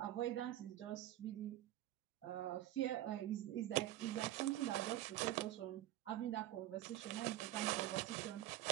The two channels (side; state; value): left; quieter; 14.1 dB